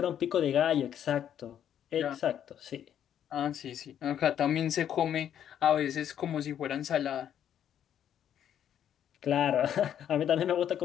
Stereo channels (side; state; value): right; quieter; 9.8 dB